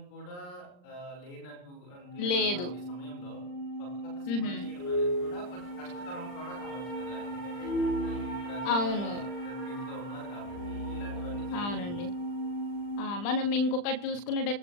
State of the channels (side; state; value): right; late; 39 ms